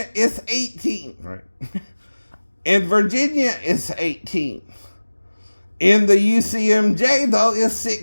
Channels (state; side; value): inverted; both; correlation -1.00